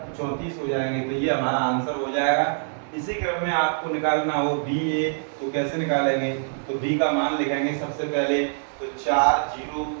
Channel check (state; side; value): silent; left; 62 dB below the other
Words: 34 हो जाएंगे। तो ये हमारा आंसर हो जाएगा। इसी क्रम में आपको निकालना हो BA, तो कैसे निकालेंगे? तो B का मान लिखेंगे सबसे पहले, तो 4 0